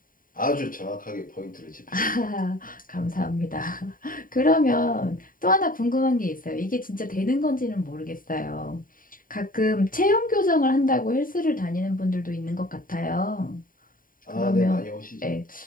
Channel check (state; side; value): late; right; 0.40 ms